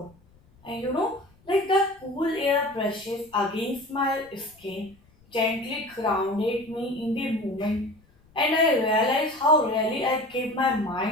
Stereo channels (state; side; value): noise; left; rumble, 30 dB below the sound